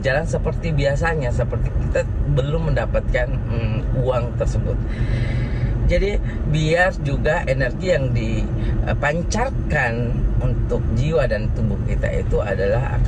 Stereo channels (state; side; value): identical; both; correlation 1.00